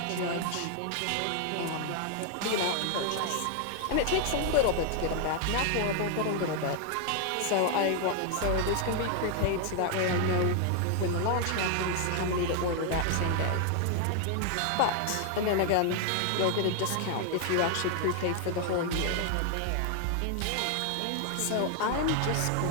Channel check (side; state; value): both; different; correlation 0.00